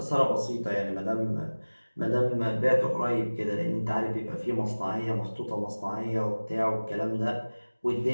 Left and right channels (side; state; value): both; inverted; correlation -1.00